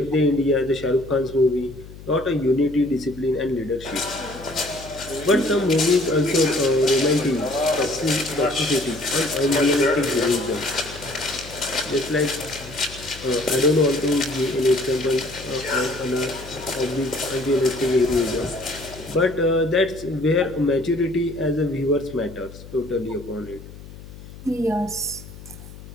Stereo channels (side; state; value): left; noise; hum, 16 dB below the sound